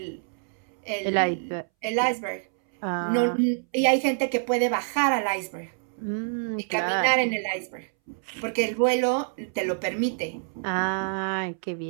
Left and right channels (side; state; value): left; silent; 60 dB below the other